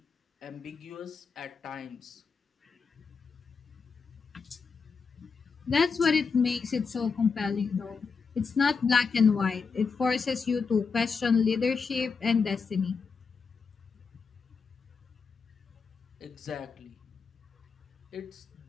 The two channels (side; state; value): right; quieter; 5.2 dB